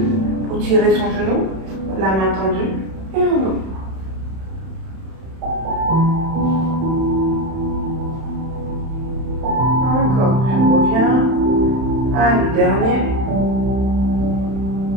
pour tirer son genou. La main tendue. Et on ouvre. Encore, je reviens. Allez, dernier.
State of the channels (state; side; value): late; left; 31 ms